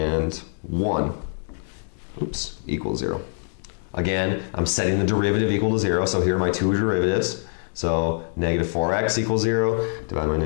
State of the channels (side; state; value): right; silent; digital silence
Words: 1 equals 0. Again, I'm setting the derivative equal to 0, so here are my two derivatives. So negative 4x equals 0, divided by